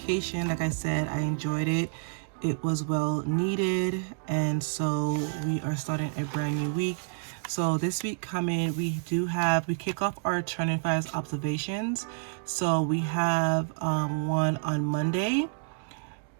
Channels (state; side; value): silent; left; digital silence